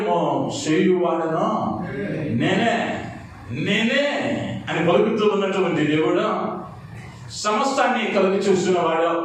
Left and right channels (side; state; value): both; identical; correlation 1.00